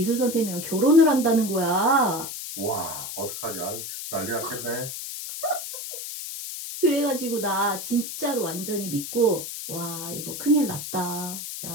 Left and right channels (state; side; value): noise; left; hiss, 7 dB below the sound